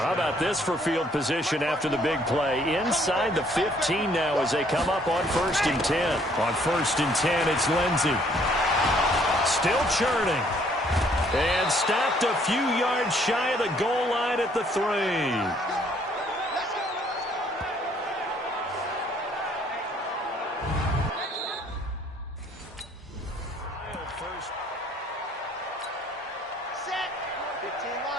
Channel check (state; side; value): normal; both; correlation 0.63